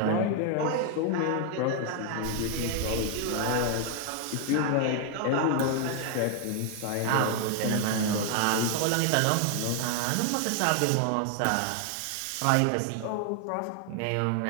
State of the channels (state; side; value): different; both; correlation 0.00